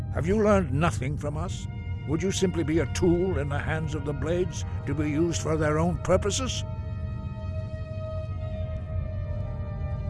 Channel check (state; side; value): identical; both; correlation 1.00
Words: Have you learned nothing from us? Would you simply be a tool in the hands of the Blades to be used for their own purposes?